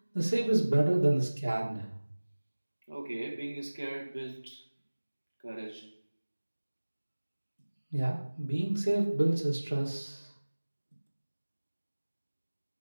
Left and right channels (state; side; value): inverted; both; correlation -1.00